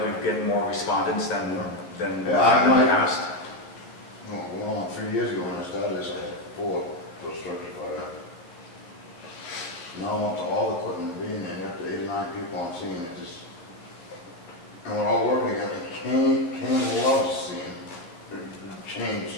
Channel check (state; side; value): late; right; 12 ms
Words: we've getting more respondents than Yeah, I in the might- past. Well, 3 years ago when I started this, I had 4 for structure fire. Now I'm up to all the equipment being there, up to 8 or 9 people on scene, it just, and we're all working together. Kane loves seeing the change